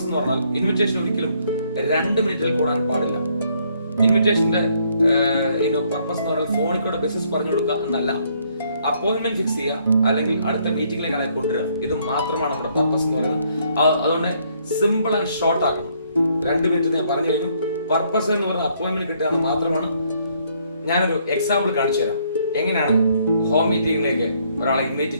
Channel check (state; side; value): inverted; both; correlation -0.68